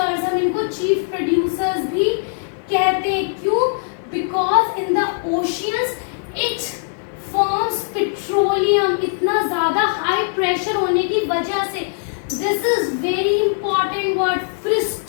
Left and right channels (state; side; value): silent; right; 66 dB below the other